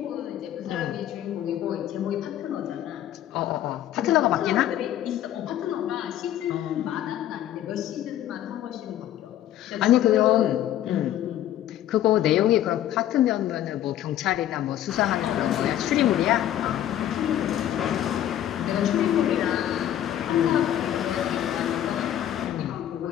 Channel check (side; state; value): right; quieter; 11.9 dB